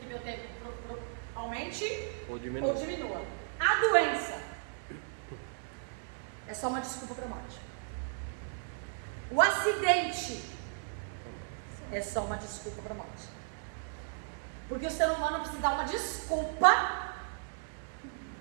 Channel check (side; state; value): left; silent; digital silence